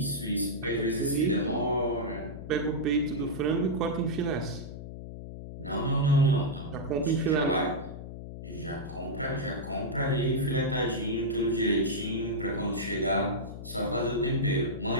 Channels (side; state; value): left; noise; hum, 10 dB below the sound